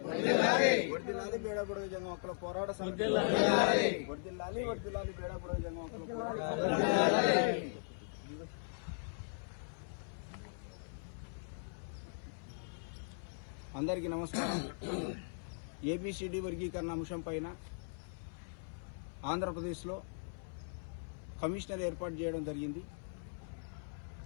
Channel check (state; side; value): silent; right; 52 dB below the other